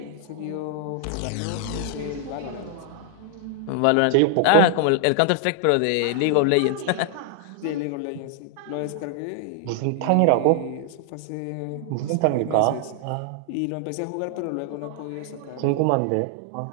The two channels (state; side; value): different; both; correlation 0.00